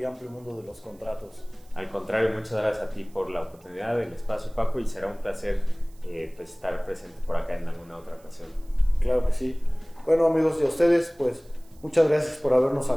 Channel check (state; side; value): noise; right; hiss, 29 dB below the sound